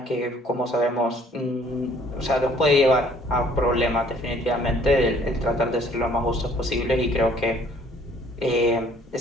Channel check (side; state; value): both; normal; correlation 0.58